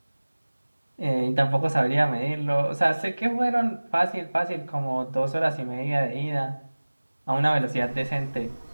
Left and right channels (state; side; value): inverted; both; correlation -1.00